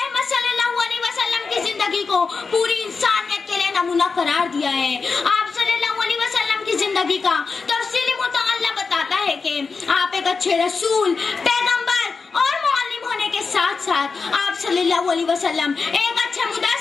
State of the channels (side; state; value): right; quieter; 4.7 dB